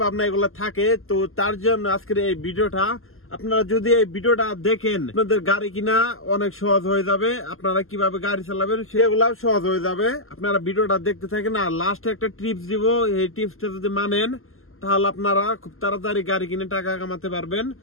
ভাবনা এগুলো থাকে। তো তার জন্য আজকের এই ভিডিওটা, আপনারা যদি এই ভিডিওটা দেখেন আপনাদের গাড়ি কিনা অনেক সহজ হয়ে যাবে, আপনারা কিভাবে গাড়ি চালাবেন সেগুলো সহজ হয়ে যাবে। আপনারা ভিডিওটা দেখতে থাকেন আর লাস্টে একটা টিপস দিব, এই টিপসটা যদি মানেন তাহলে আপনারা খুব তাড়াতাড়ি গাড়ি কিনে টাকা কামাতে পারবেন।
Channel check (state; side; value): late; right; 0.62 ms